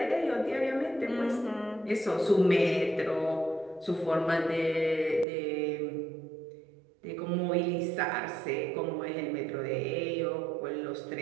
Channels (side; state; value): left; drops out; at 5.2 s